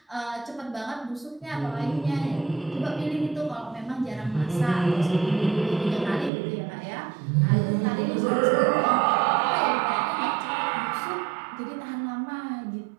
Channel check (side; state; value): left; drops out; at 6.3 s